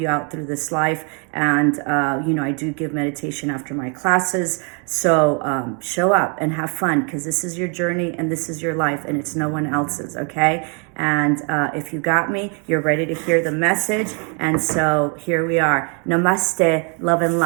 out through this life. And, I do give meditation after my classes. So, show up and have fun, because this is your journey and this is your life, and it's no one else's. Okay. And if you got me, you're ready to hear the message. And so here we are. Namaste, love and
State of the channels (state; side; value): quieter; left; 37.1 dB